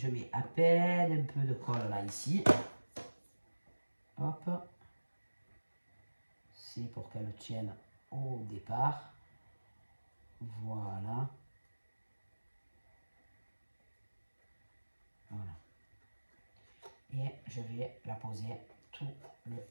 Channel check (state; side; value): inverted; both; correlation -1.00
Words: mets à peine un peu de colle là ici, hop, c'est pour qu'elle tienne au départ, voilà. Voilà. Et je vais la poser tout le